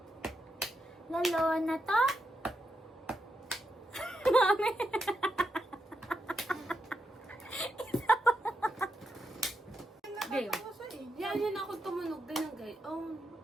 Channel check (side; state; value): both; normal; correlation 0.84